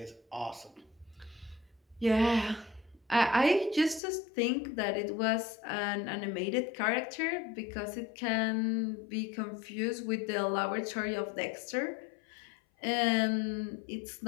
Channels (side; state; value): right; drops out; at 4.0 s